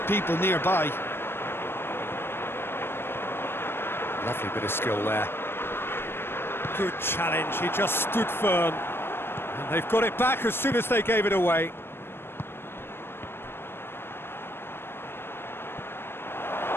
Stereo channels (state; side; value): late; right; 0.11 ms